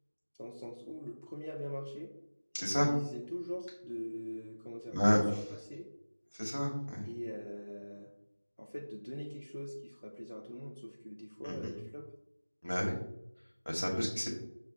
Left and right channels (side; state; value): both; inverted; correlation -1.00